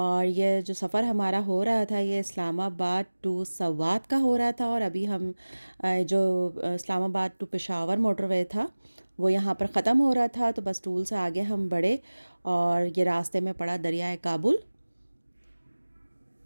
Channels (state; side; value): inverted; both; correlation -1.00